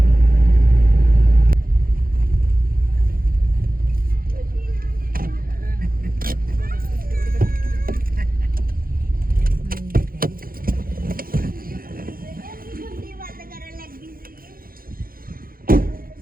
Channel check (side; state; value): left; late; 0.42 ms